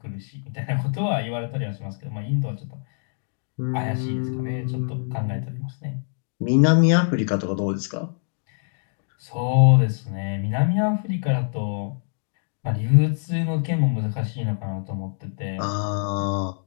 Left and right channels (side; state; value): right; silent; digital silence